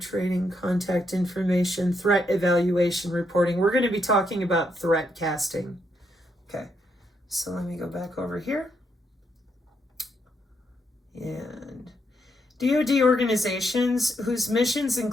contact information, threat evaluation reporting. We're going to be talking about threat casting. Okay, so let me go back over here. And DOD organizations whose missions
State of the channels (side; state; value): both; normal; correlation 0.78